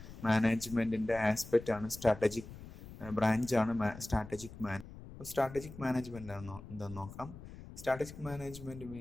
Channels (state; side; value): noise; left; rumble, 15 dB below the sound